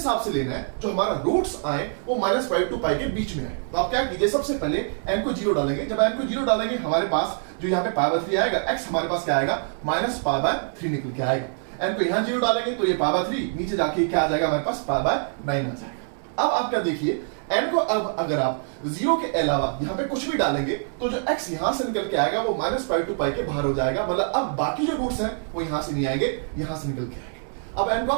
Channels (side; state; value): left; silent; digital silence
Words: से लेना है जो हमारा रूट्स आए वो -पाई टू पाई के बीच में आए। तो आप क्या कीजिए, सबसे पहले n को 0 डालेंगे। जब n को 0 डालेंगे हमारे पास जो यहाँ पे पावर 3 आएगा, x हमारे पास क्या आएगा, -पाई/3 निकल के आएगा। n को यहाँ 0 डालेंगे तो ये पावर 3 नीचे जाके क्या आ जाएगा, हमारे पास पाई/9 आ जाएगा। अब आप क्या देखिए, n को अब अगर आप 0 के अलावा यहाँ पे कुछ भी डालेंगे तो जो x यहां से निकल के आएगा वो -पाई टू पाई के बाहर हो जाएगा, मतलब अब बाकी जो रूट्स हैं वो यहां से नहीं आएंगे, यहां से निकल के आएंगे। अब n को